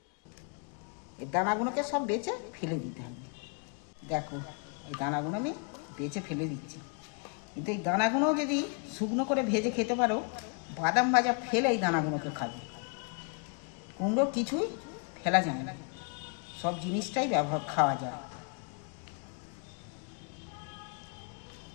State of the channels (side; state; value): right; quieter; 38.4 dB